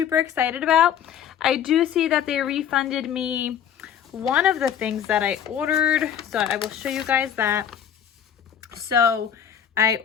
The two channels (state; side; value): quieter; right; 9.1 dB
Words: excited about. I do see that they refunded me one of the things that I ordered, so I will show you guys that. So I